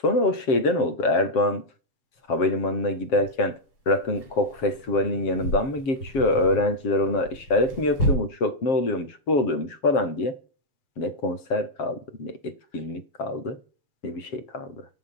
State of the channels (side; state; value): right; late; 7.4 ms